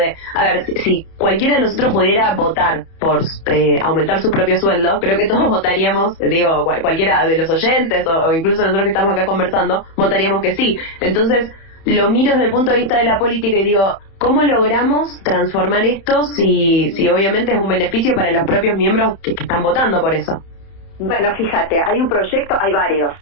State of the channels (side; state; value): right; late; 31 ms